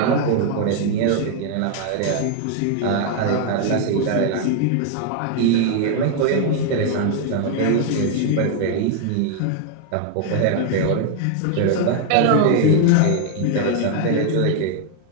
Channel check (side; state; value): both; different; correlation 0.00